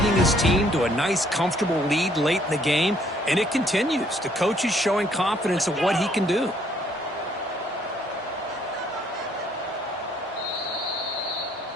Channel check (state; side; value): normal; both; correlation 0.65